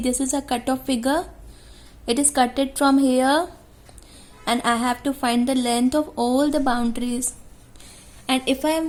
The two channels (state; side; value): identical; both; correlation 1.00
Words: is a cutoff figure. It is cutted from here, and I have to find the length of all the boundaries. And if I